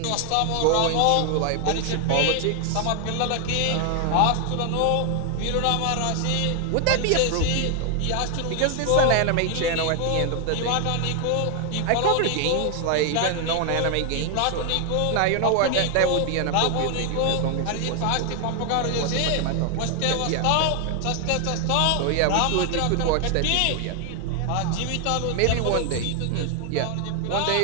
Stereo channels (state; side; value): different; both; correlation 0.00